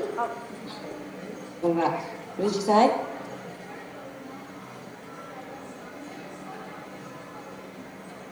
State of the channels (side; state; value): both; identical; correlation 1.00